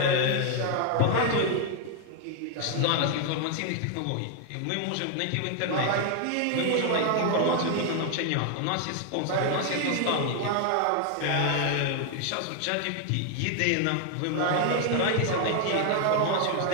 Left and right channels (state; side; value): different; both; correlation 0.00